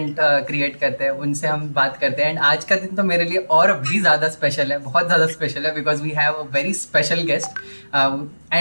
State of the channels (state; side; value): inverted; both; correlation -1.00